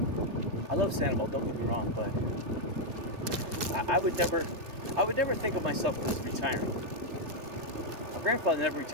I love Sanibel, don't get me wrong, but I would never think of myself as retiring. My grandfather never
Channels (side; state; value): left; late; 3.2 ms